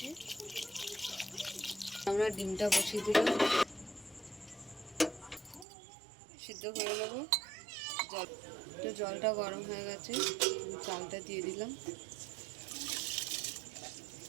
আমরা ডিমটা বসিয়ে দিলাম, সিদ্ধ করে নেবো। জলটা গরম হয়ে গেছে, চালটা দিয়ে দিলাম।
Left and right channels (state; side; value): drops out; left; at 5.7 s